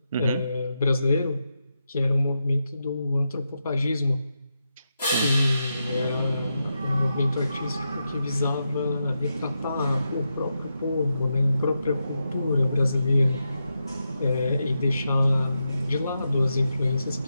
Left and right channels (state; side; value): inverted; both; correlation -0.86